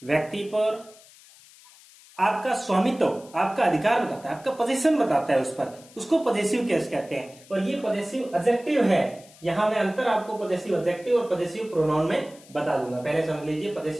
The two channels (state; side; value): noise; left; hiss, 24 dB below the sound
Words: व्यक्ति पर आपका स्वामित्व, आपका अधिकार बताता है, आपका पोजीशन बताता है उस पर, उसको पजेसिव केस कहते हैं। और ये पजेसिव एडजेक्टिव है। यहां मैं अंतर आपको पजेसिव एडजेक्टिव और पजेसिव प्रोनाउन में बता दूंगा। पहले समझ लीजिए,